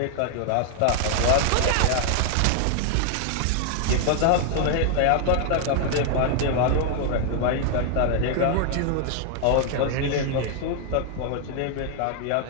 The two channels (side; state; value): both; different; correlation 0.00